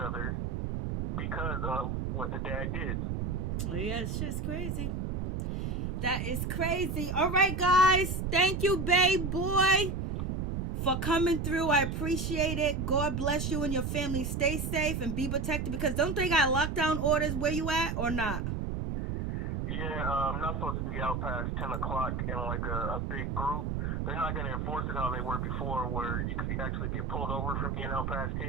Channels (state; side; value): noise; right; rumble, 1 dB below the sound